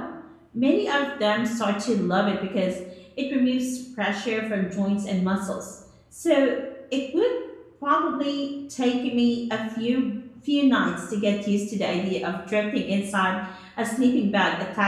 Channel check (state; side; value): identical; both; correlation 1.00